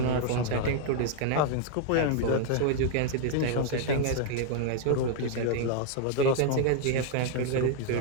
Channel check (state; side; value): different; both; correlation 0.00